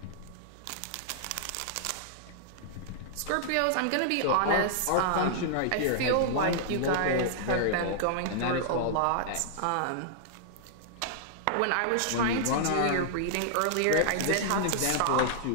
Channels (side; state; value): both; different; correlation -0.01